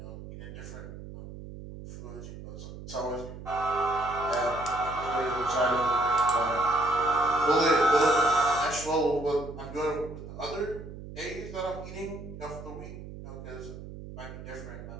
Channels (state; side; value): noise; right; hum, 12 dB below the sound